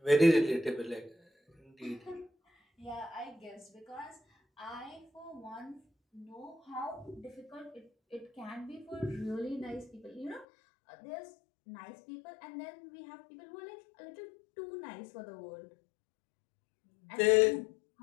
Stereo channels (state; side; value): drops out; right; at 10.5 s